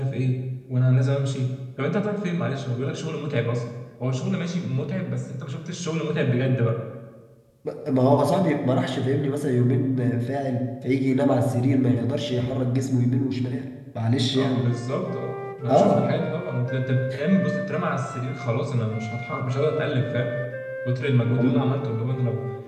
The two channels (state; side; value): identical; both; correlation 1.00